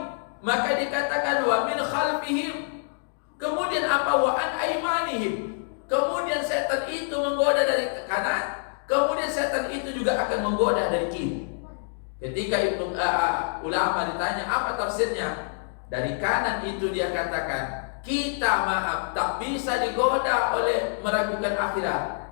Maka dikatakan wa min khalfihim. Kemudian apa? Wa an aimanihim. Kemudian setan itu menggoda dari kanan. Kemudian setan itu juga akan menggoda dari kiri. Ketika ulama ditanya apa tafsirnya, dari kanan itu dia katakan, kita maaf tak bisa digoda oleh meragukan akhirat,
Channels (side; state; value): right; silent; digital silence